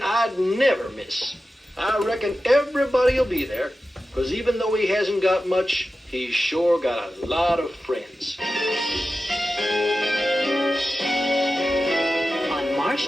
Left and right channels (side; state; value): both; normal; correlation 0.93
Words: I'd never miss. I reckon everybody will be there, because even though he hasn't got much, he's sure got a lot of friends. On March